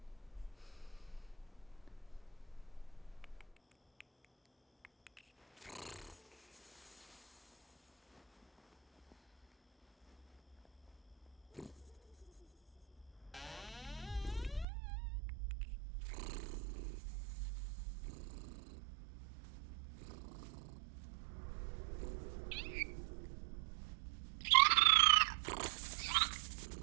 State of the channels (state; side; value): drops out; left; at 14.7 s